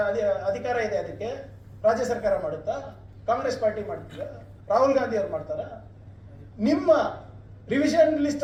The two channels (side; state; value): both; identical; correlation 1.00